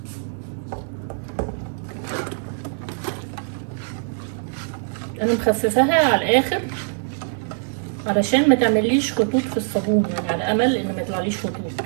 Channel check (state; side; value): silent; left; digital silence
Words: انا مخففاها على الاخر علشان ما تعمليش خطوط في الصابون، يعني على امل ان ما يطلعليش خطوط.